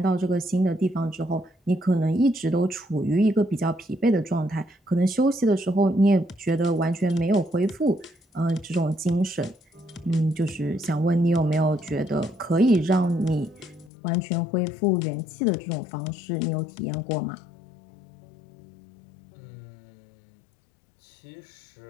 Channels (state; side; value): drops out; right; at 13.9 s